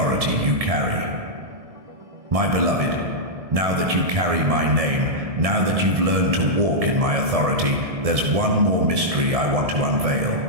you carry. My beloved, now that you carry my name, now that you've learned to walk in my authority, there's one more mystery I want to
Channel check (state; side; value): late; left; 1.7 ms